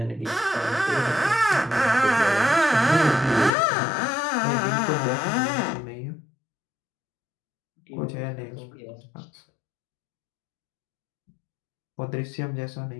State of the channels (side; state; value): right; drops out; at 3.5 s